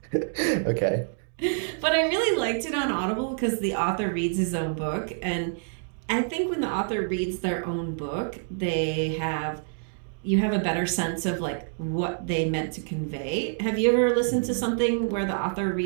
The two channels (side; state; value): left; silent; digital silence